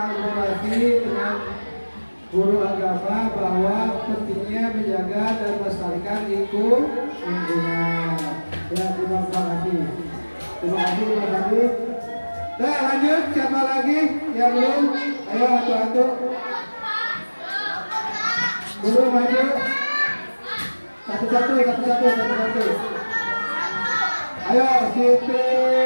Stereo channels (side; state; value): both; inverted; correlation -1.00